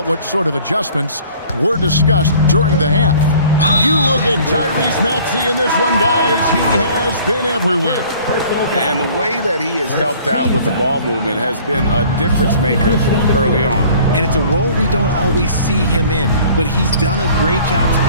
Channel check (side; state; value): both; inverted; correlation -0.51